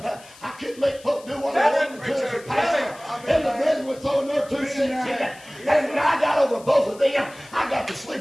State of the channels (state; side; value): noise; left; hiss, 22 dB below the sound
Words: I couldn't make folk do what I wanted to as a pastor. And the brethren were throwing their 2 cents in it. And when I got over both of them, I got to